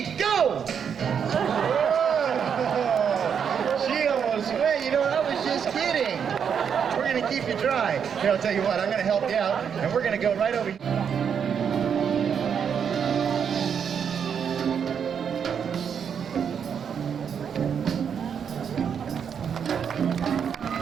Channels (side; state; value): left; quieter; 7.4 dB